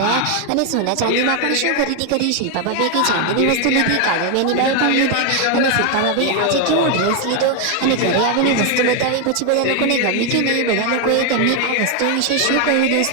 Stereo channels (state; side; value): different; both; correlation 0.01